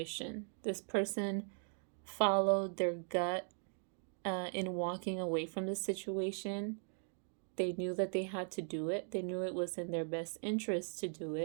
This person followed their gut in walking away from the situation. They knew that they had to do it. They knew it was in their best interest to do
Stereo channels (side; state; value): left; silent; 52 dB below the other